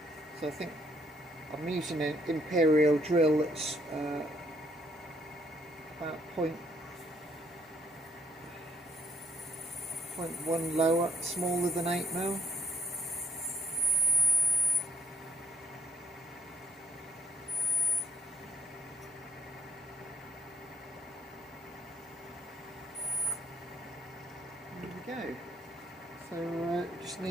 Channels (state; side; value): normal; both; correlation 0.60